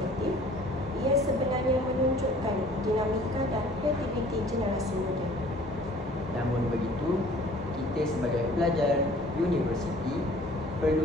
ia sebenarnya menunjukkan dinamika dan kreativiti generasi muda. Namun begitu, kita sebagai pelajar universiti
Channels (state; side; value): normal; both; correlation 0.52